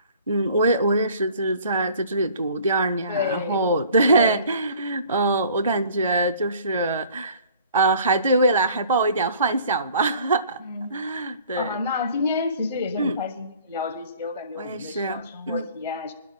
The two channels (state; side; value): inverted; both; correlation -0.51